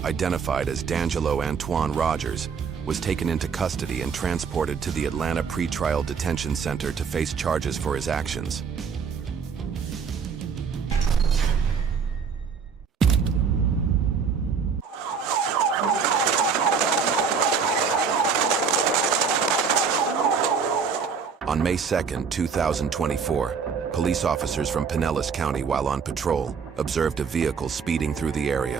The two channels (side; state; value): left; quieter; 6.0 dB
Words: identified as D'Angelo Antoine Rogers, was taken into custody and transported to the Atlanta Pretrial Detention Center to face charges for his actions. On May 2, 2024, police officers from Pinellas County, while on patrol, observed a vehicle speeding through the